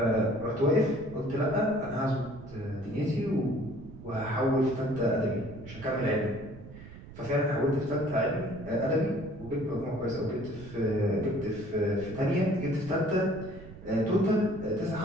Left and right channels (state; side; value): noise; right; rumble, 16 dB below the sound